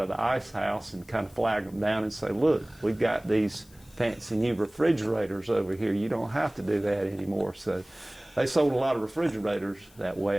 the ice house and kind of flag them down and say, look, we've got these fancy new refrigerators over here. You don't have to do that anymore. So they sold a lot of refrigerators that way,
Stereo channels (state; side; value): noise; left; hiss, 27 dB below the sound